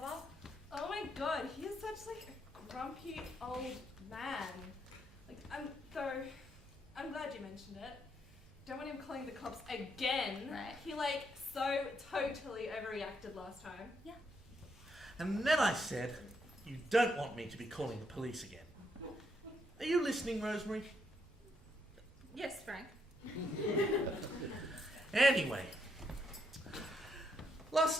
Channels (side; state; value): both; normal; correlation 0.76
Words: Oh my god, he is such like a grumpy old man. Like, I'm glad you mentioned it. Don't want him calling the cops again. Right. He like so totally overreacted last time. Yeah. And then I said, you don't want me to be calling the police again. Are you listening, Rosemary? Yes, Frank. Anyway,